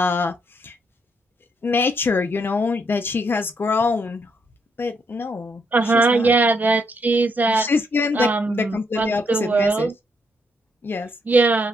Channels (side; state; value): both; normal; correlation 0.75